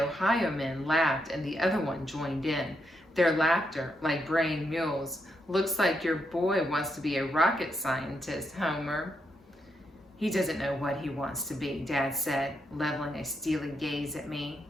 men laughed and the other one joined in. Their laughter, like braying mules. Looks like your boy wants to be a rocket scientist, Homer. He doesn't know what he wants to be, Dad said, leveling a steely gaze at me.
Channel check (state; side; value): normal; both; correlation 0.81